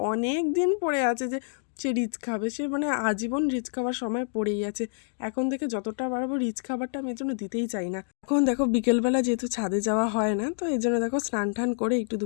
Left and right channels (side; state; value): right; silent; digital silence